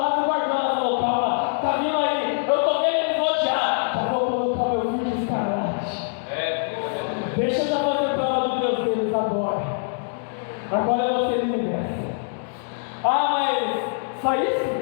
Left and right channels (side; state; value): right; silent; digital silence